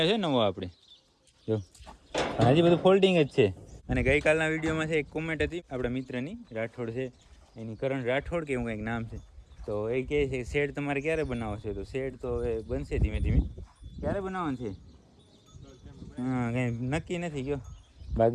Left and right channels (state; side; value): identical; both; correlation 1.00